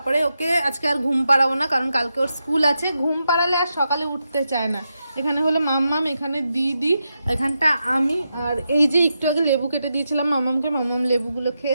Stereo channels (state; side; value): inverted; both; correlation -0.87